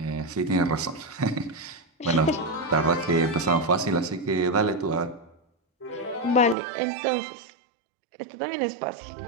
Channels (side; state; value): left; drops out; at 6.6 s